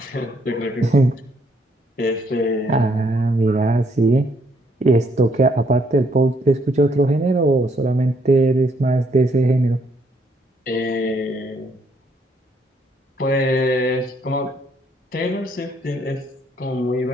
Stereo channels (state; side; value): normal; both; correlation 0.70